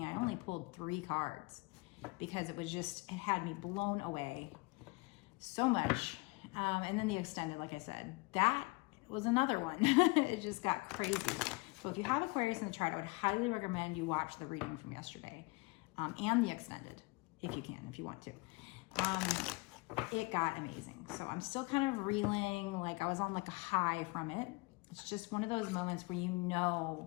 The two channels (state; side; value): quieter; right; 25.6 dB